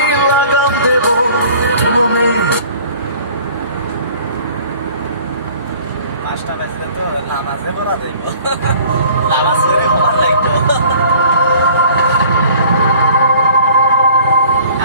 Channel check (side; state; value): both; inverted; correlation -0.51